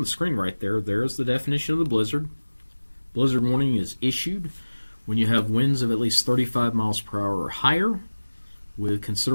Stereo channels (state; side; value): inverted; both; correlation -1.00